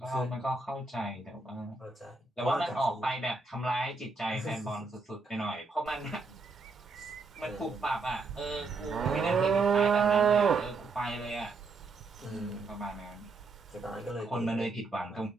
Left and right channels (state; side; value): quieter; left; 3.9 dB